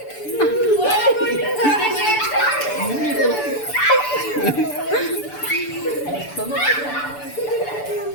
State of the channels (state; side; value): late; right; 6.9 ms